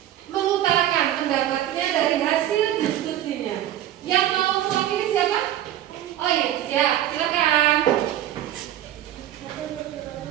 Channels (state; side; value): quieter; left; 12.4 dB